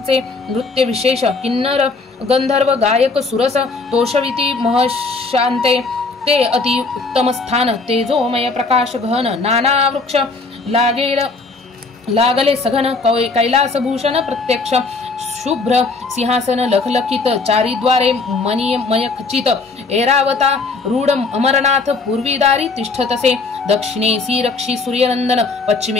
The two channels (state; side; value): quieter; right; 3.9 dB